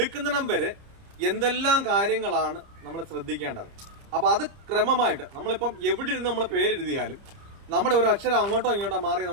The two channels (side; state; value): left; late; 30 ms